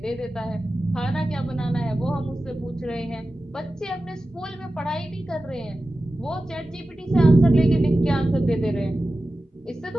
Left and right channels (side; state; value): both; normal; correlation 0.94